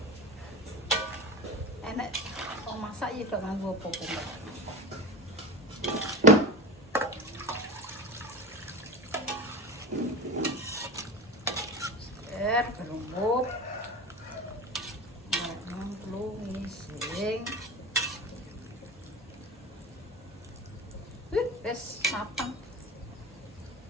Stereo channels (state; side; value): normal; both; correlation 0.28